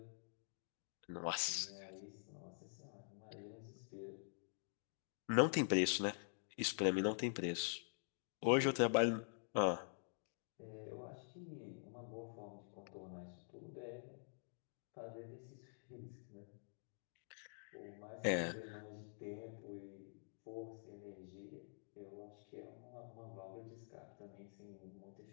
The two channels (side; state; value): right; silent; digital silence